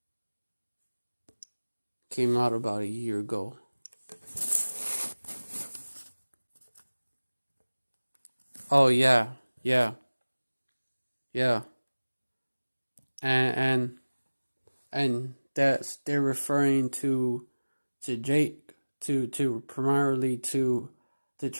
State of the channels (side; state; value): both; inverted; correlation -1.00